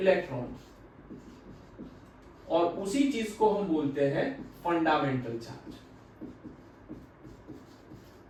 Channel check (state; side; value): identical; both; correlation 1.00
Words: और उसी चीज को हम बोलते हैं फंडामेंटल चार्ज।